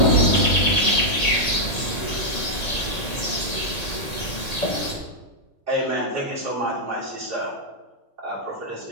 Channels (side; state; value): right; late; 1.8 ms